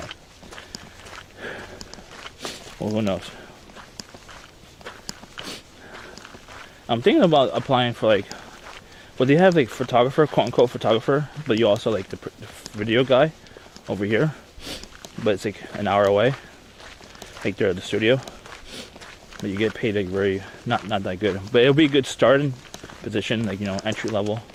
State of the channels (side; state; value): both; identical; correlation 1.00